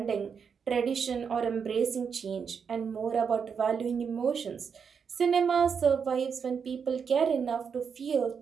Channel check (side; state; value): left; quieter; 6.5 dB